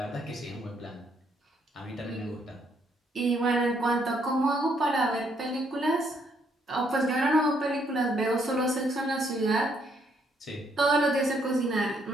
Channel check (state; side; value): normal; both; correlation 0.71